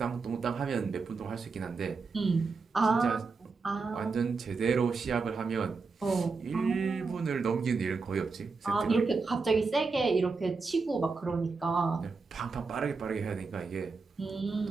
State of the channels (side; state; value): left; quieter; 4.5 dB